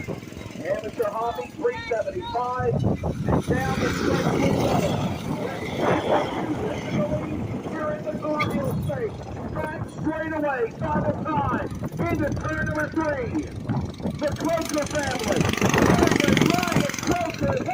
Amateur Hobby 375, and down the stretch. Here in the Garfield State, back straight away, final time, into turn number 3. The Crusher family. Ryan Crusher,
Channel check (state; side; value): identical; both; correlation 1.00